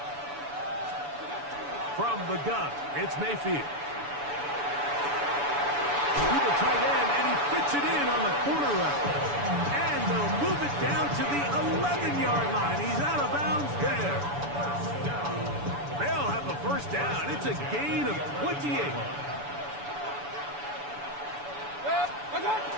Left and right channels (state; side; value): late; left; 7.0 ms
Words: From the gun, it's Mayfield. Tight end, and he fits it in on the corner route. And they'll move it down to the 11-yard line. He's out of bounds there. They'll have a 1st down. It's a gain of 28.